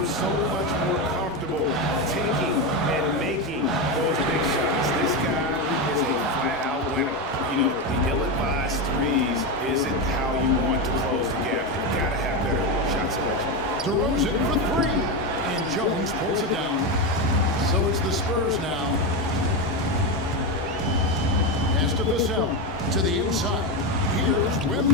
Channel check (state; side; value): normal; both; correlation 0.13